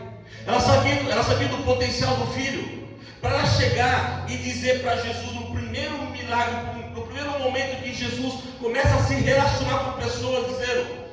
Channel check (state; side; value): identical; both; correlation 1.00